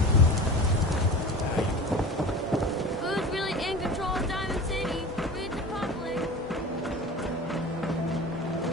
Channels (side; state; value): both; normal; correlation 0.35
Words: Who's really in control of Diamond City? Read the public.